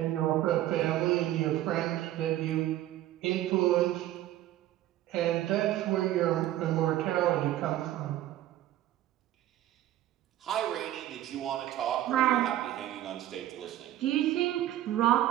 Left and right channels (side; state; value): left; quieter; 13.7 dB